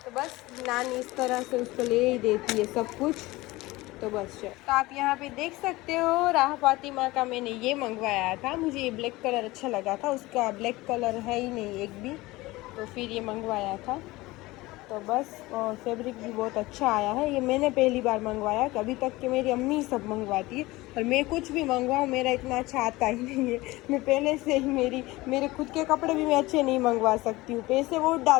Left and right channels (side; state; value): right; quieter; 20.1 dB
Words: तो बस नानी इस तरह से उसको ले ही देती है सब कुछ। तो बस तो आप यहाँ पे देख सकते हो, राह फातिमा का मैंने ये मंगवाया था। मुझे ये ब्लैक कलर अच्छा लगा था, उसका ब्लैक कलर है ही नहीं एक भी, तो फिर ये मंगवाया था। तो बस, और फैब्रिक भी बहुत अच्छा आया है। ये मैंने पहली बार मंगवाया, कभी तक कि मेरी अम्मी सब मंगवाती है, और मैं कुछ भी मंगवाऊँ मेरा इतना अच्छा आता ही नहीं है। मैं पहले से ही मेरे खुद के कपड़े भी मैं अच्छे नहीं मंगवा सकती हूँ, पैसे बहुत